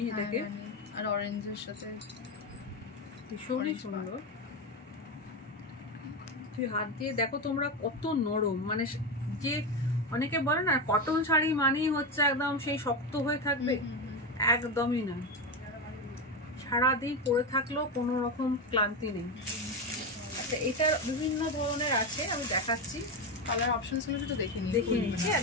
এটাকে, আর অরেঞ্জের সাথে ভীষণই সুন্দর। তুই হাত দিয়ে দেখো তোমরা কত নরম, মানে যে অনেকে বলে না কটন শাড়ি মানেই হচ্ছে একদম সেই শক্ত হয়ে থাকবে, একদমই না। সারাদিন পরে থাকলেও কোনো রকম ক্লান্তি নেই। আচ্ছা, এটার বিভিন্ন ধরনের আছে, আমি দেখাচ্ছি। কালার অপশনস গুলো তো দেখে নিচ্ছি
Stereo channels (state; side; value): normal; both; correlation 0.14